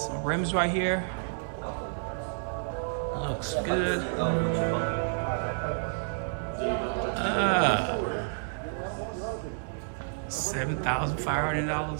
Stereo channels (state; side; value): silent; left; digital silence